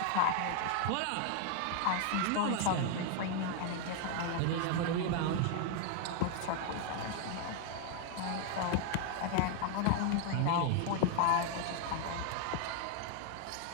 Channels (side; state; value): both; different; correlation 0.00